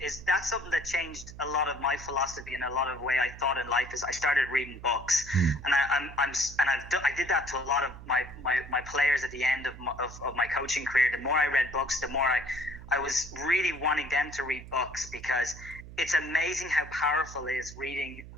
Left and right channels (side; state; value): right; noise; hum, 15 dB below the sound